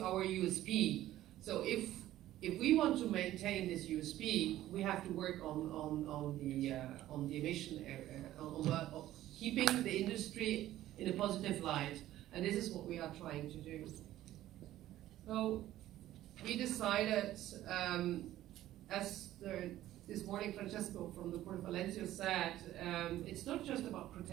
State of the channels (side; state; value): left; quieter; 14.1 dB